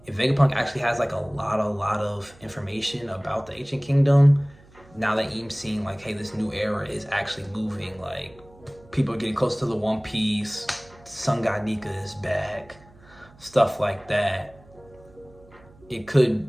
if Vegapunk actually has like a lot of information about the Ancient Kingdom, now that Eam's seeing like, hey, this new era is actually moving, like people are getting close to the One Piece, Sun God Nika is back, stuff like that, it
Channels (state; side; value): noise; right; hum, 25 dB below the sound